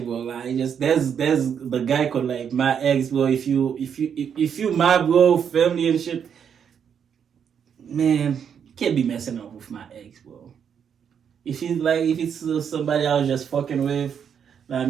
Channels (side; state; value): left; quieter; 7.7 dB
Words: bro. Like, just there's the guy called like my ex, bro. If you my bro, family and shit, man, you can't be messing up with my ex, bro. If it's somebody I was just fucking with. I